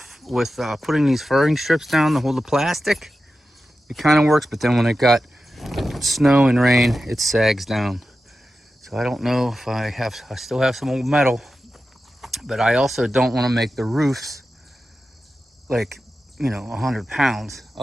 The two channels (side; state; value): both; normal; correlation 0.92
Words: with putting these furring strips down to hold the plastic. It kind of works, but then when it got snow and rain, it sags down. So I don't know if I still have some old metal, but I also don't want to make the roofs like, 100 pounds.